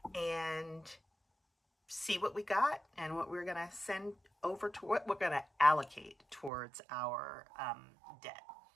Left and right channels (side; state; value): left; drops out; at 6.5 s